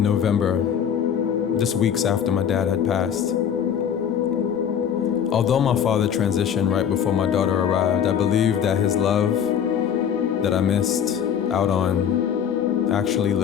November, just weeks after my dad had passed. Although my father transitioned right before my daughter arrived, I believe that his love that I missed out on actually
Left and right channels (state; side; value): quieter; right; 8.4 dB